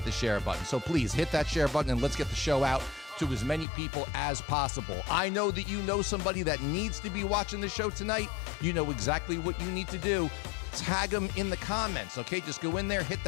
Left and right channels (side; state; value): right; drops out; at 3.7 s